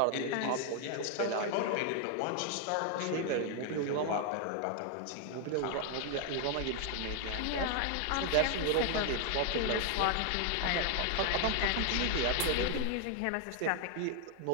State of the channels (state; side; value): different; both; correlation 0.00